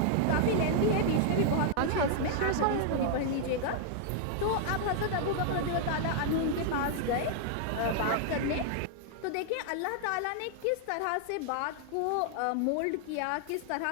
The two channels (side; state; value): both; different; correlation -0.01